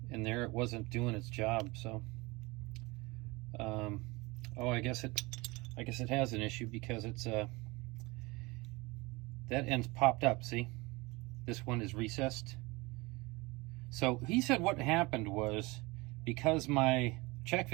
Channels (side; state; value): left; quieter; 23.9 dB